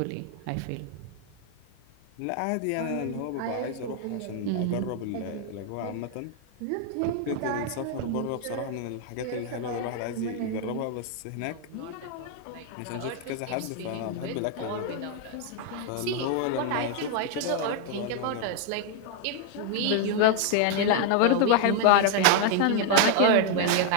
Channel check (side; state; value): both; different; correlation 0.00